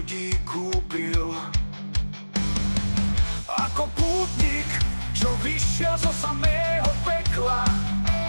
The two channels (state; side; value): inverted; both; correlation -1.00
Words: kúpil. Ako pútnik, čo vyšiel zo samého pekla.